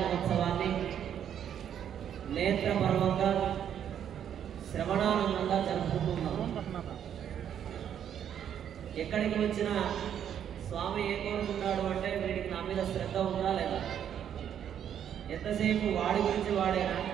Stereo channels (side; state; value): left; quieter; 9.3 dB